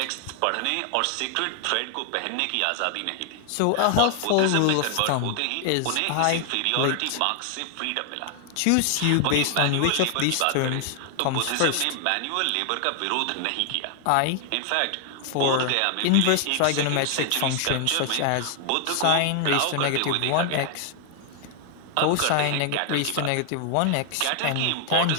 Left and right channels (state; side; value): different; both; correlation 0.00